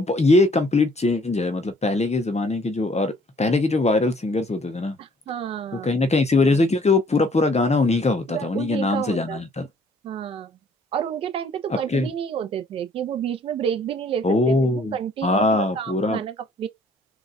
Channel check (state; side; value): normal; both; correlation 0.59